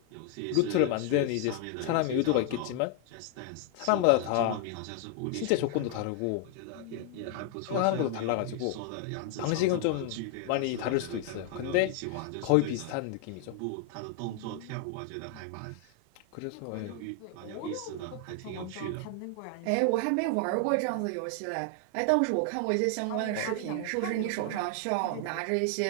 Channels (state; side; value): different; both; correlation 0.00